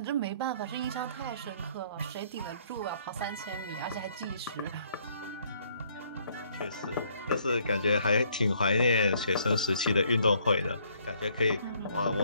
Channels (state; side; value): inverted; both; correlation -0.64